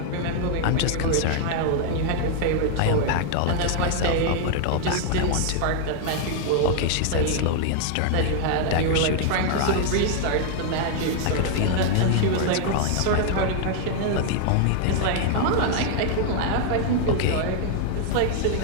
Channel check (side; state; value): both; different; correlation 0.00